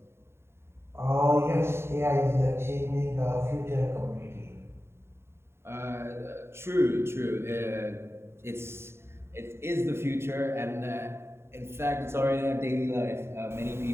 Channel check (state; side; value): late; left; 0.12 ms